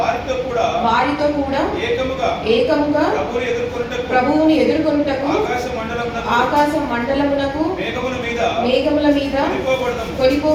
కూడా ఏకముగా ప్రభువుని ఎదుర్కొనుటకు ఆకాశ మండలమునకు మేఘముల మీద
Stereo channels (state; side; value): identical; both; correlation 1.00